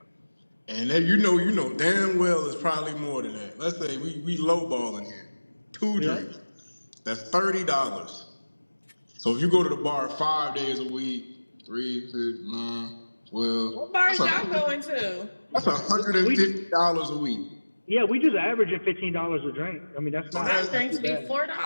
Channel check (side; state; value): both; inverted; correlation -1.00